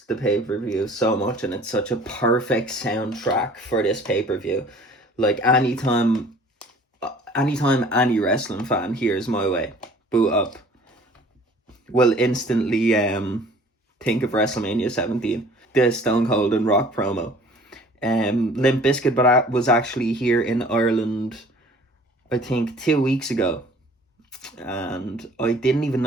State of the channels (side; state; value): both; normal; correlation 0.50